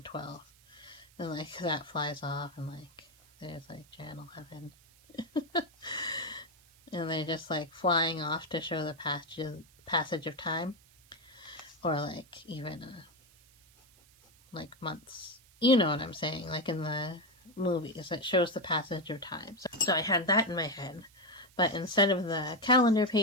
12, and like that flies off and like there's like Jan 11. And they're just like flying off to show the passage of time, or like even like months. You know what I'm saying? Like in the movies, it shows the passage of time. So I had that in my head, but instead of the calendar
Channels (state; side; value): noise; right; hiss, 28 dB below the sound